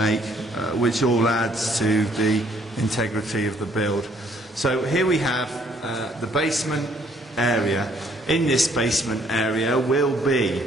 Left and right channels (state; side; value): normal; both; correlation 0.65